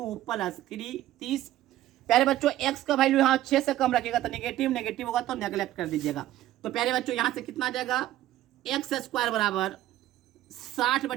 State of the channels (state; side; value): quieter; left; 14.1 dB